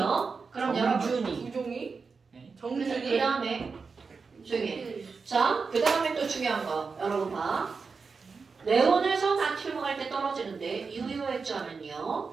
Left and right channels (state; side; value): quieter; left; 4.9 dB